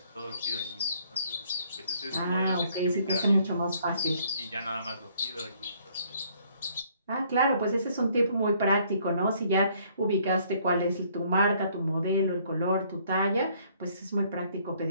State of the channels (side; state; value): both; inverted; correlation -0.63